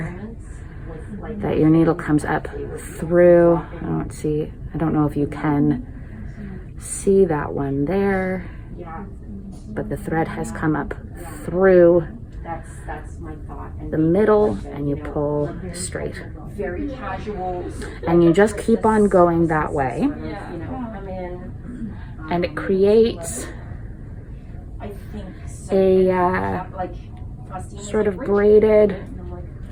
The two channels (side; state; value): both; identical; correlation 1.00